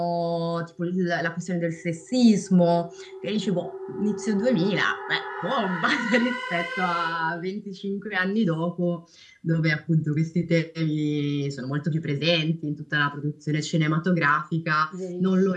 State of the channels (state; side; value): identical; both; correlation 1.00